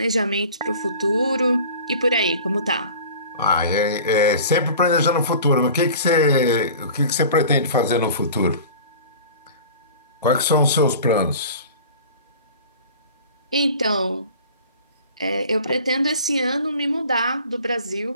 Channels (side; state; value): both; inverted; correlation -0.41